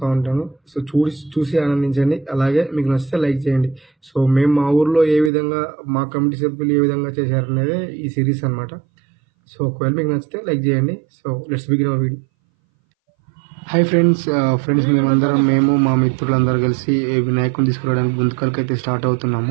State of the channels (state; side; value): drops out; left; at 5.3 s